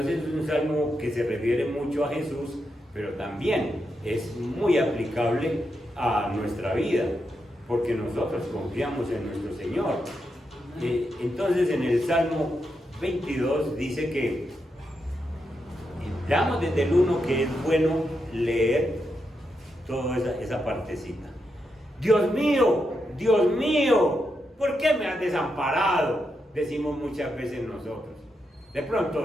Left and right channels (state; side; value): normal; both; correlation 0.84